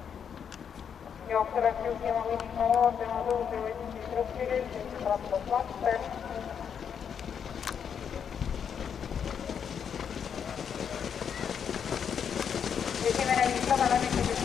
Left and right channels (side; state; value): right; quieter; 7.6 dB